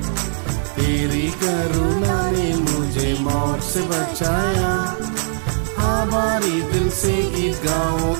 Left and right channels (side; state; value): left; silent; 58 dB below the other